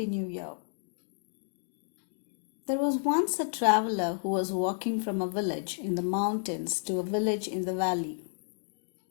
new year. There was once a traveler who was walking from a village in the mountains to a village in the valley.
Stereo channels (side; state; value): right; silent; digital silence